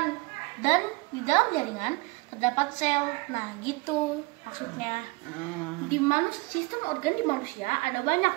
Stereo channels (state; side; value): quieter; left; 24.5 dB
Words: Dan di dalam jaringan terdapat sel. Nah, gitu maksudnya. Di sistem organ di manusia ada banyak,